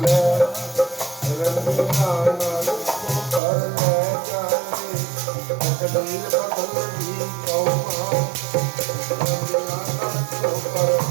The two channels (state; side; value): drops out; left; at 3.4 s